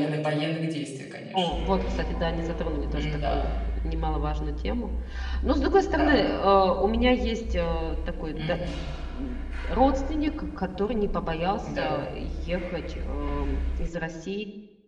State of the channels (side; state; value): both; identical; correlation 1.00